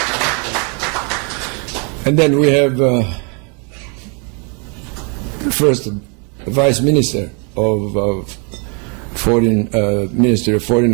And then we have first Vice Minister of Foreign Ministry of Foreign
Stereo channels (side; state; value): left; quieter; 35.9 dB